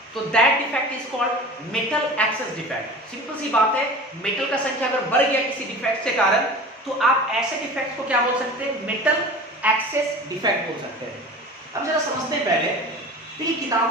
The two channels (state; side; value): normal; both; correlation 0.37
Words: तो that defect is called metal excess defect. Simple सी बात है, मेटल का संख्या अगर बढ़ गया किसी डिफेक्ट के कारण, तो आप ऐसे डिफेक्ट को क्या बोल सकते हैं, मेटल एक्सेस डिफेक्ट बोल सकते हैं। अब जरा समझते हैं पहले, तो ये